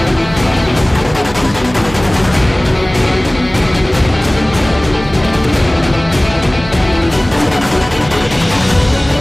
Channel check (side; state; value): right; noise; hum, 16 dB below the sound